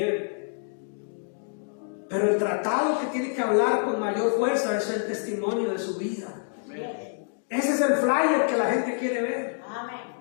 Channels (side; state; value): right; silent; 60 dB below the other